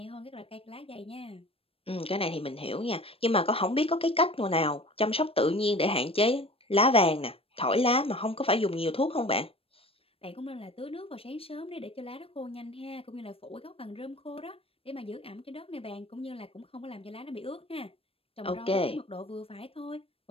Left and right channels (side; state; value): right; late; 0.28 ms